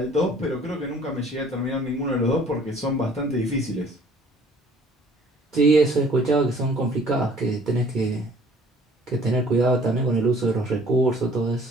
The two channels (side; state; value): both; normal; correlation 0.54